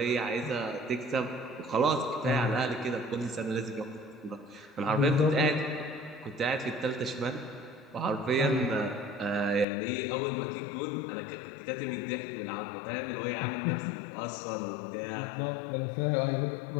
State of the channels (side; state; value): right; drops out; at 9.7 s